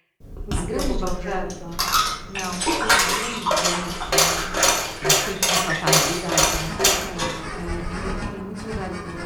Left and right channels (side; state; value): both; identical; correlation 1.00